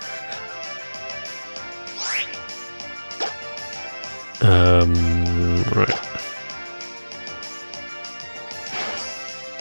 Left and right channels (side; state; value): both; inverted; correlation -1.00